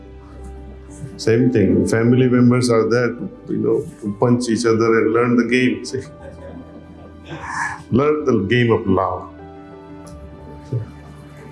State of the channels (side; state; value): both; identical; correlation 1.00